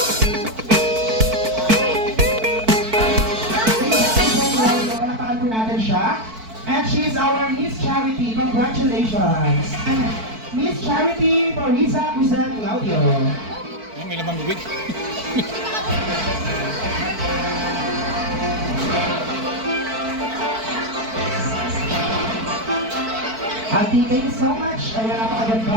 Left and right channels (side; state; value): left; late; 4.5 ms